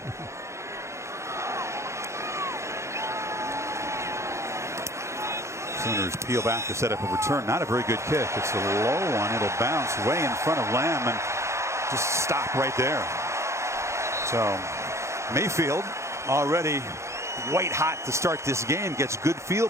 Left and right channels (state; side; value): late; left; 0.14 ms